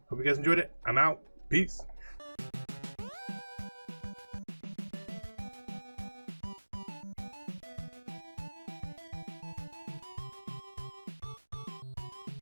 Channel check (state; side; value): inverted; both; correlation -1.00